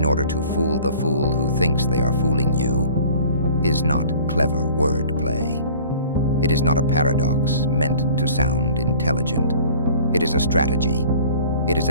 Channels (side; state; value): both; inverted; correlation -0.47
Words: order to fool the fool who thinks they are fooling you is not clever wordplay. It is not a paradox meant to sound intelligent. It is a strategy. It is